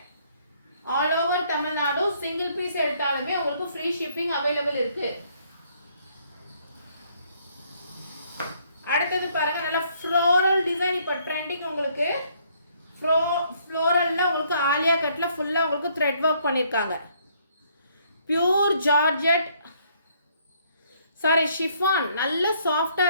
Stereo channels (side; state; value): both; inverted; correlation -0.66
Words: All over Tamil Nadu single piece எடுத்தாலுமே உங்களுக்கு ஃப்ரீ ஷிப்பிங் அவைலபிள் இருக்கு. அடுத்தது பாருங்க நல்ல ஃப்ளோரல் டிசைன் இப்போ ட்ரெண்டிங். உங்களுக்கு ஃப்ளோரல்ல உங்களுக்கு ஆலியா கட்ல ஃபுல்லா உங்களுக்கு த்ரெட் ஒர்க் பண்ணிருக்காங்க. Pure georgette sorry chiffon. நல்ல சாஃப்டா